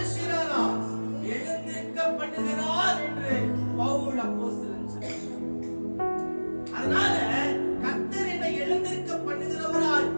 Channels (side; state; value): both; inverted; correlation -1.00